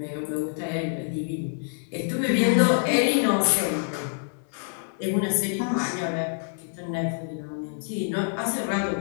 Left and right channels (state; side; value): silent; right; 61 dB below the other